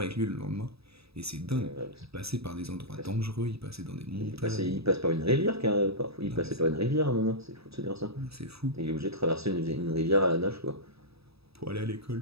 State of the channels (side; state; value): left; late; 0.77 ms